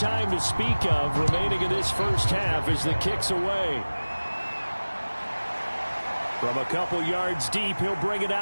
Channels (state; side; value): inverted; both; correlation -1.00